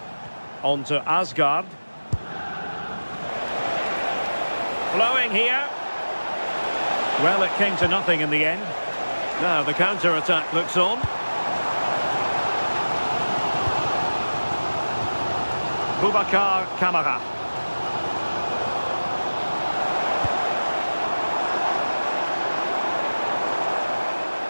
On to Asgard. Flowing here. Well, it came to nothing in the end. Now the counter-attack looks on. Boubacar Kamara.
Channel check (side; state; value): both; inverted; correlation -1.00